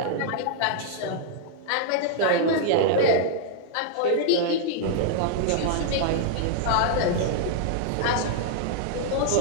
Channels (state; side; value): different; both; correlation -0.01